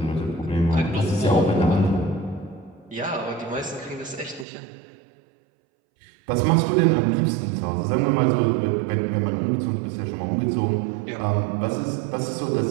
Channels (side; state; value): left; drops out; at 4.5 s